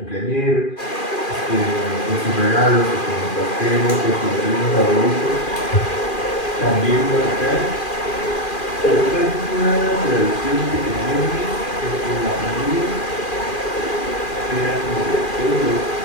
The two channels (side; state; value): right; late; 2.4 ms